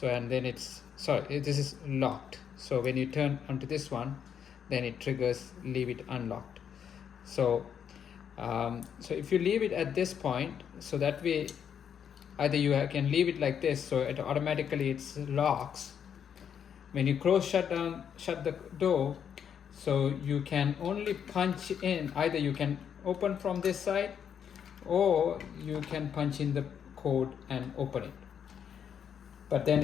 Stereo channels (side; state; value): right; quieter; 8.1 dB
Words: and then it's sorry, this is locked. So when you turn onto this one, then it triggers leave it unlocked. So so if you leave it at this point, so that way either you can leave it like this, so it automatically it's locks. When you shut the door, so you can only punch in, either you can open from this side or you can punch in the code and open it. But then